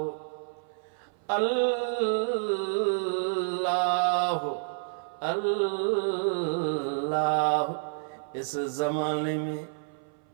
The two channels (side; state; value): left; silent; 56 dB below the other